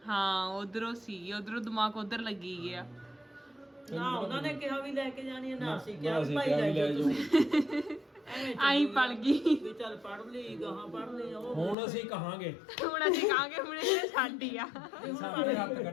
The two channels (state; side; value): drops out; right; at 11.8 s